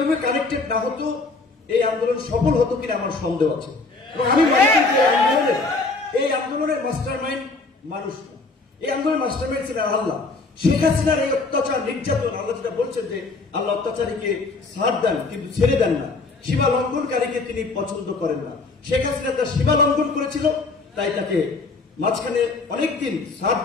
কানেক্টেড না হতো, এই আন্দোলন সফল হতো কিনা আমার সন্দেহ আছে। এবং আমি মনে করি যে এই আন্দোলনের মাস্টারমাইন্ড মানুষ না, এই আন্দোলনের মাস্টারমাইন্ড ছিলেন আল্লাহ। শেখ হাসিনার এই অত্যাচার নির্যাতন, আল্লাহ যেটা বলছেন যে আল্লাহ অত্যাচারীকে ছাড় দেন কিন্তু ছেড়ে দেন না, সীমা লঙ্ঘনকারীকে তিনি পছন্দ করেন না। শেখ হাসিনা তার সীমা লঙ্ঘন করেছিল, তাই তাকে মাঝখানে অনেকদিন ছাড়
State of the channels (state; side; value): quieter; right; 3.7 dB